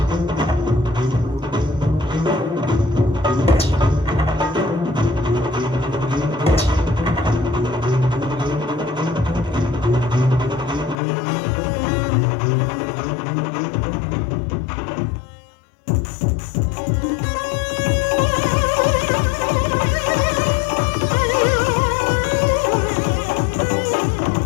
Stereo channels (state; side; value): drops out; right; at 11.0 s